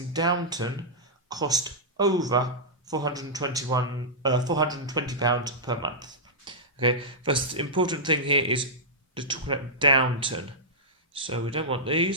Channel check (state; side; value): normal; both; correlation -0.12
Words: Downton cost over £420 per month? Okay, first important thing here is to talk about Downton. So we don't want